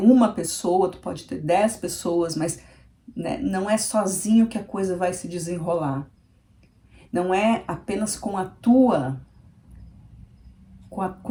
pessoa, tu pode ter 10 pessoas, mas né, não é sozinho que a coisa vai se desenrolar. Não é apenas com a tua,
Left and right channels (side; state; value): both; identical; correlation 1.00